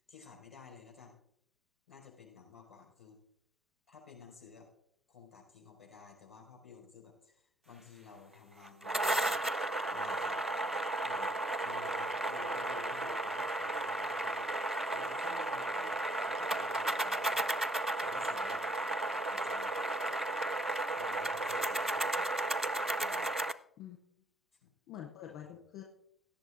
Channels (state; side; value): normal; both; correlation 0.68